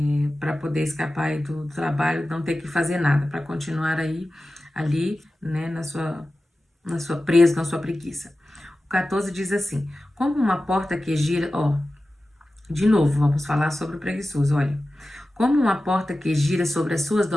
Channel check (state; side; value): normal; both; correlation 0.95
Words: Para poder escapar aí do trabalho, não ter que fazer nada, para continuar ali, né, na sua presa, na sua preguiça. O 14 diz assim, como uma porta que gira, de novo, vamos falar sobre o preguiçoso, olha. Como uma porta que gira sobre as suas